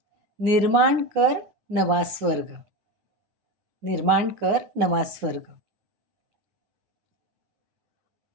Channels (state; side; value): late; left; 9.4 ms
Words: निर्माण कर नवा स्वर्ग. निर्माण कर नवा स्वर्ग.